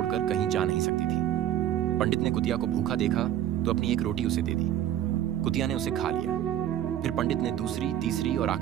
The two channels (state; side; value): quieter; left; 11.7 dB